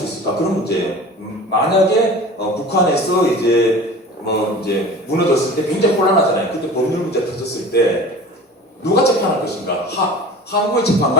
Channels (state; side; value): normal; both; correlation 0.39